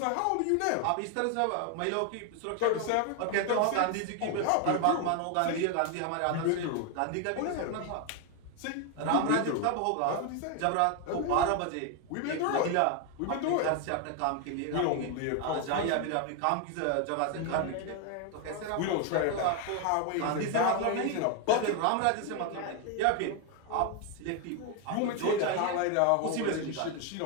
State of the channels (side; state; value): both; different; correlation 0.01